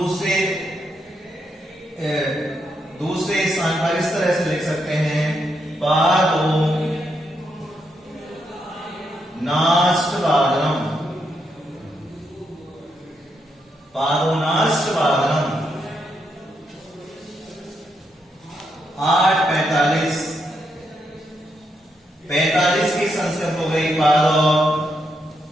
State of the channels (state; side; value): normal; both; correlation 0.80